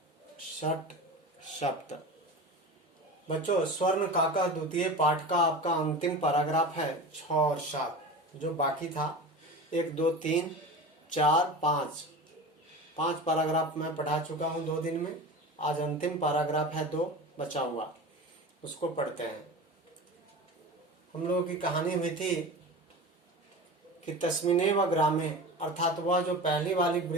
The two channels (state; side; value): normal; both; correlation 0.32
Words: षट सप्त। बच्चों, स्वर्ण काका द्वितीय पाठ का आपका अंतिम पैराग्राफ है 6 और 7। जो बाकी था 1 2 3 4 5 पैराग्राफ मैं पढ़ा चुका हूँ 2 दिन में। आज अंतिम पैराग्राफ है 2 बचा हुआ, उसको पढ़ते हैं। हम लोगों की कहानी हुई थी कि तस्मिनेव ग्रामे, अर्थात वह जो पहली वाली